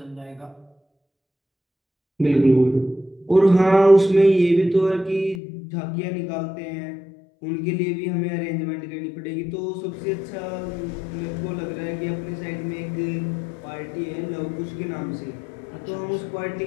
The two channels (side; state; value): right; drops out; at 5.4 s